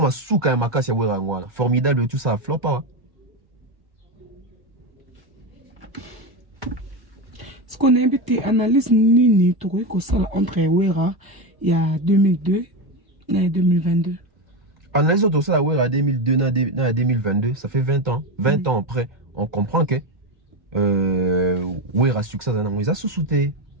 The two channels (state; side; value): late; left; 1.2 ms